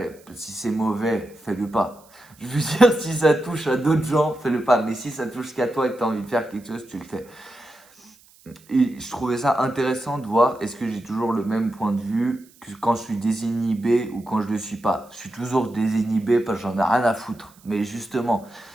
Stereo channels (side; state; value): right; noise; hiss, 28 dB below the sound